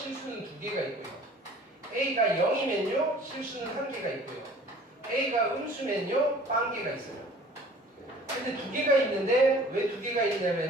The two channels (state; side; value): normal; both; correlation 0.49